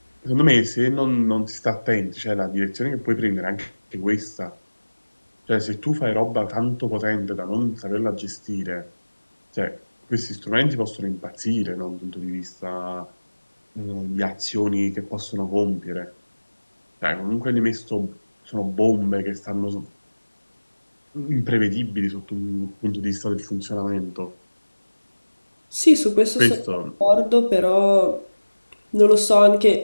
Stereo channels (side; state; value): both; inverted; correlation -1.00